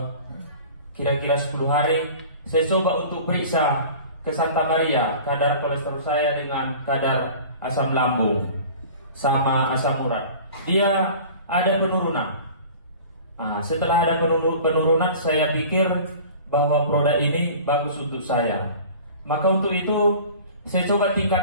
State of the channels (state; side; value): inverted; both; correlation -0.42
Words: kira-kira 10 hari. Saya coba untuk periksa ke Santa Maria kadar kolesterol saya dengan kadar asam lambung sama asam urat. Dia ada penurunan. Setelah ada penurunan, saya pikir bahwa produk ini bagus untuk saya. Maka untuk itu saya coba